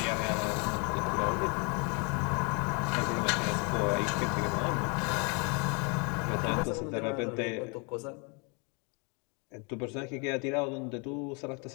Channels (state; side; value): quieter; right; 33.4 dB